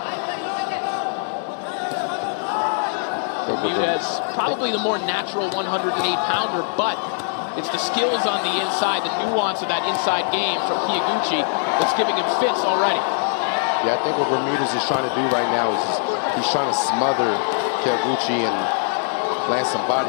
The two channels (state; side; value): silent; right; digital silence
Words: Bermudez, probably the more natural 108-pounder, but it's the skills on the inside, the nuance of that inside game from Kyoguchi that's giving him fits already. Yeah, I think what Bermudez is trying to do right now is he's trying to smother Kyoguchi and land some